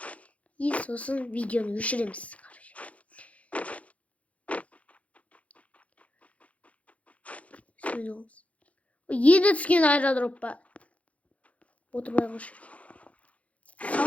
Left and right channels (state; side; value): late; right; 0.065 ms